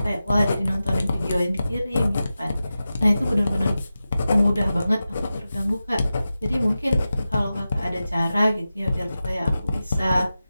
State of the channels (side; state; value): both; inverted; correlation -0.93